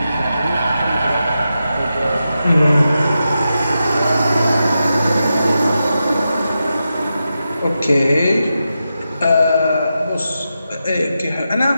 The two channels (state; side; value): inverted; both; correlation -0.89